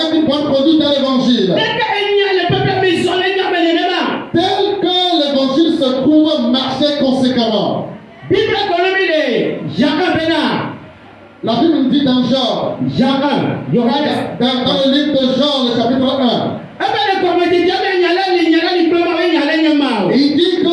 une bonne conduite dans l'évangile. Tel que l'évangile se trouve, marchez conséquemment. La Bible nous dit dans Jean, dans le livre de Jean, le chapitre 1, il dit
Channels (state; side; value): identical; both; correlation 1.00